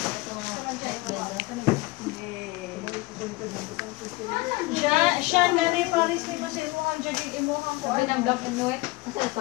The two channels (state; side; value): quieter; right; 21.3 dB